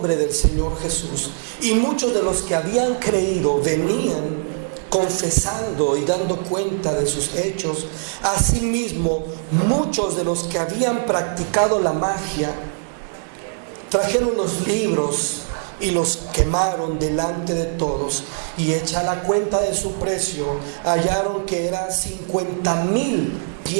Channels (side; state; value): left; silent; 65 dB below the other